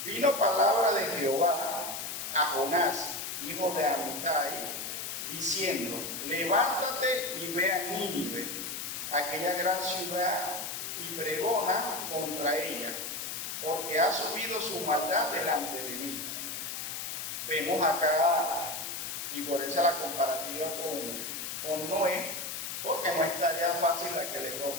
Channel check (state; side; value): noise; left; hiss, 5 dB below the sound